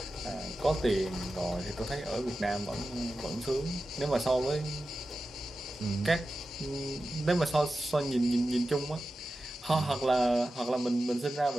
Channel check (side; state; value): both; normal; correlation 0.93